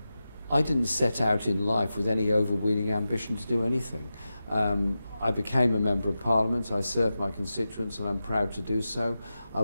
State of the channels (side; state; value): both; inverted; correlation -0.92